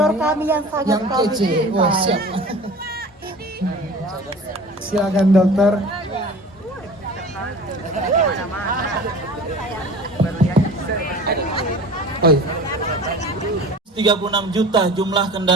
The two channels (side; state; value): both; normal; correlation 0.40